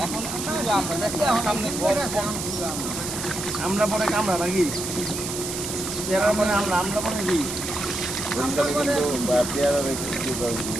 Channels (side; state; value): right; noise; hiss, 5 dB below the sound